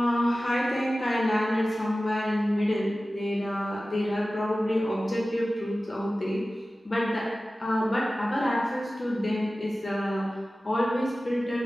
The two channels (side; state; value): both; normal; correlation 0.96